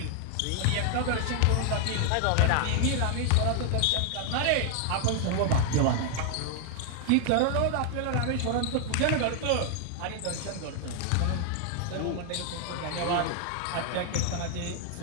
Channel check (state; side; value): different; both; correlation 0.00